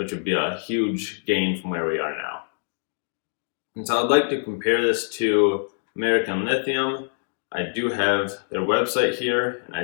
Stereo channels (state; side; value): silent; right; digital silence